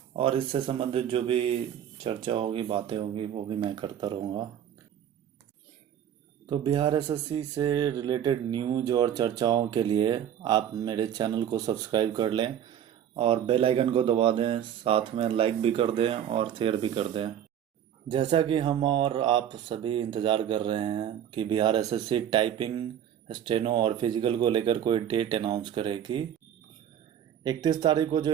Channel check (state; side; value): quieter; left; 10.0 dB